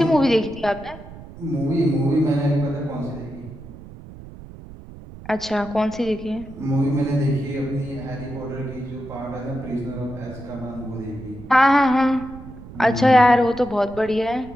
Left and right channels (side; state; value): right; noise; rumble, 16 dB below the sound